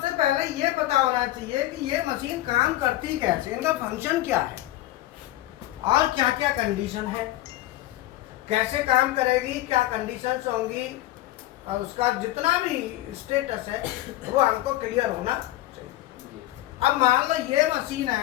पहले ये पता होना चाहिए कि ये मशीन काम करती कैसे, इनका फंक्शन क्या है और क्या क्या कंडीशन है, कैसे काम करेगी, क्या कंडीशंस होंगी, और उसका जितना भी स्टेटस है वो हमको क्लियर होना चाहिए। अब मान लो ये मशीन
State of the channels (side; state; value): right; quieter; 15.7 dB